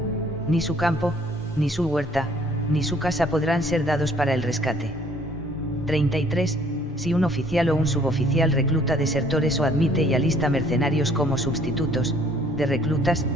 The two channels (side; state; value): both; normal; correlation 0.59